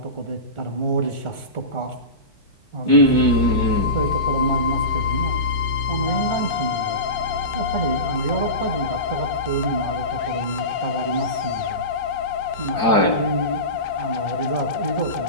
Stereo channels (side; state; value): right; late; 4.8 ms